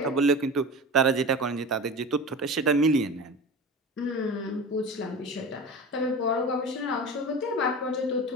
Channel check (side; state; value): both; normal; correlation 0.31